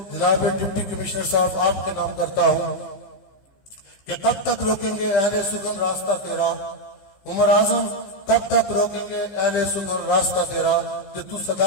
جناب ڈپٹی کمشنر صاحب آپ کے نام کرتا ہوں کہ کب تک روکیں گے اہل سگن راستہ تیرا. عمر اعظم کب تک روکیں گے اہل سگن راستہ تیرا، کہ تو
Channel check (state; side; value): late; right; 15 ms